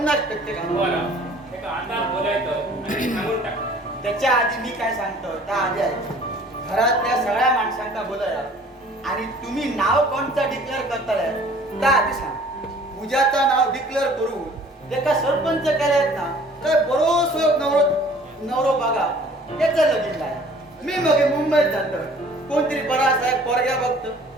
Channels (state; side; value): normal; both; correlation 0.52